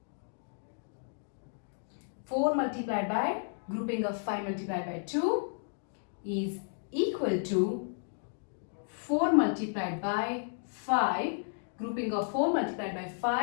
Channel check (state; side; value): silent; right; digital silence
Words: 4 multiplied by grouping of 5 multiplied by 2 is equal to 4 multiplied by 5 grouping of 4 multiplied by